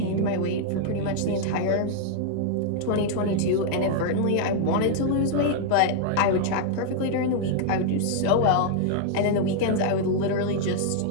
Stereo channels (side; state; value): both; different; correlation -0.01